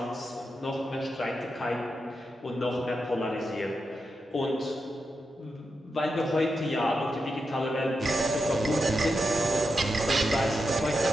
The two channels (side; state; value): both; normal; correlation 0.87